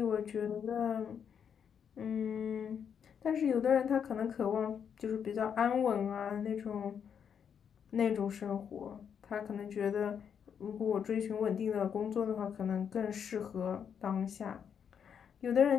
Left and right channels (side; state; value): right; quieter; 7.7 dB